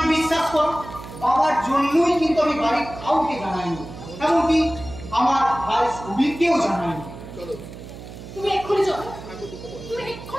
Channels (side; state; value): right; noise; hum, 14 dB below the sound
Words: বিশ্বাস করো, বাবার জন্যই কিন্তু আমি বাড়ির কাউকে জানাইনি, এমনকি আমার ভাই সুবীরকেও জানাইনি। তুমি এক্ষুনি চলো, তুমি